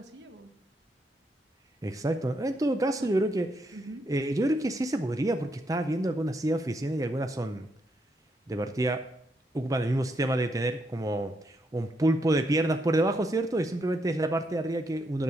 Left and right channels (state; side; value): normal; both; correlation 0.78